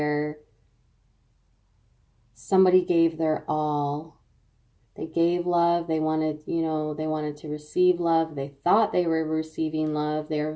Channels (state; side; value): identical; both; correlation 1.00